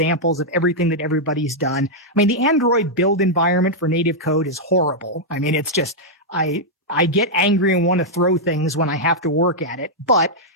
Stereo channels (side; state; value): both; normal; correlation -0.06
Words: of everything that everybody's done. I mean, the Android build environment for native code is horrible. I mean, it's just, I get angry and want to throw things when I have to work at it, but